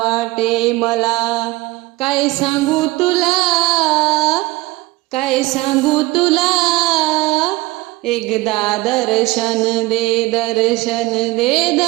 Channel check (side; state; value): left; quieter; 20.6 dB